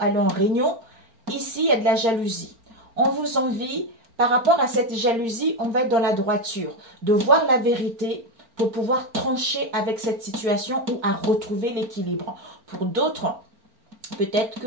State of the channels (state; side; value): late; left; 4.4 ms